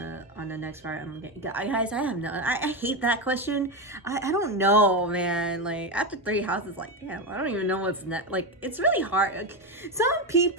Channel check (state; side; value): normal; both; correlation 0.13